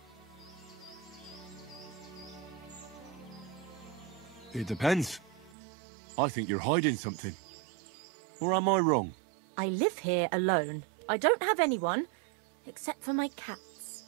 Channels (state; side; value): drops out; left; at 5.5 s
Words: It depends. I think you're hiding something. Or am I wrong? I live here alone. I don't have anyone, except for my cats.